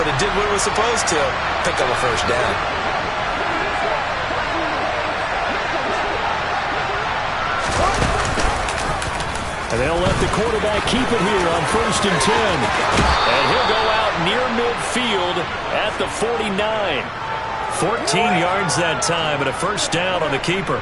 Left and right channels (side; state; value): both; identical; correlation 1.00